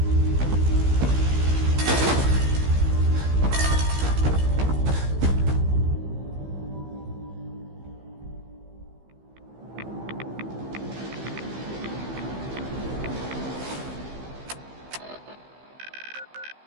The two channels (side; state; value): left; late; 15 ms